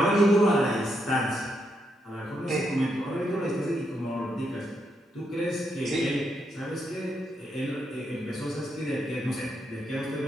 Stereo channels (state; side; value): normal; both; correlation 0.80